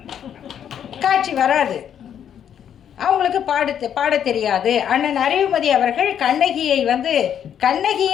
காட்சி வராது. அவங்களுக்கு பாட தெரியாது. அண்ணன் அறிவுமதி அவர்கள் கண்ணகியை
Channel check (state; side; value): quieter; right; 9.1 dB